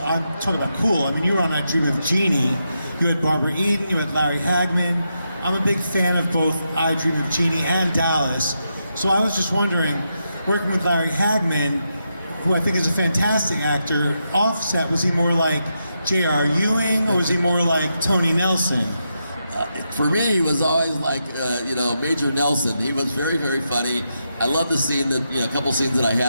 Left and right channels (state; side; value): inverted; both; correlation -0.84